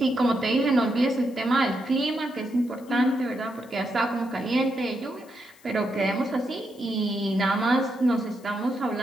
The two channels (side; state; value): left; noise; hiss, 27 dB below the sound